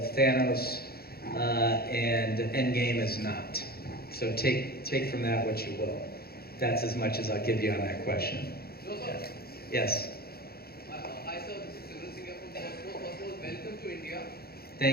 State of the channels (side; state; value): right; late; 0.45 ms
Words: Thanos, and Endgame is not. So take from that what you will. That's as much as I'll give you on that question. Yes. Hi sir, this is Civil Singer from First of all, welcome to India.